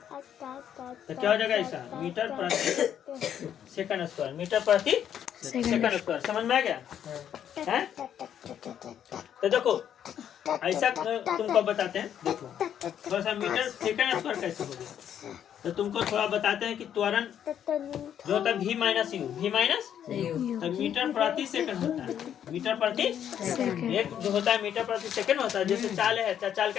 तो क्या हो जाएगा ऐसा, मीटर प्रति सेकंड स्क्वायर, मीटर प्रति सेकंड स्क्वायर, समझ में आ गया है। तो देखो ऐसा तुमको बताते हैं, देखो थोड़ा सा मीटर सेकंड स्क्वायर कैसे हो गया, तो तुमको थोड़ा बताते हैं कि त्वरण जो होता है v minus you, v minus तो मीटर प्रति सेकंड होता है, मीटर प्रति एक जो होता है मीटर प्रति सेकंड होता है, जैसे चाल है, चाल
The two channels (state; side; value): quieter; right; 9.5 dB